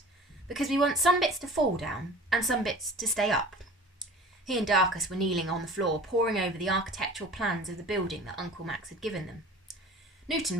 because we want some bits to fall down and some bits to stay up." He and Darcus were kneeling on the floor, poring over the architectural plans of the building that Uncle Max had given them.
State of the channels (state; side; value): normal; both; correlation 0.42